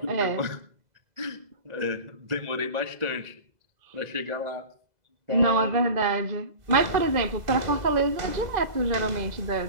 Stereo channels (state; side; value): late; left; 2.0 ms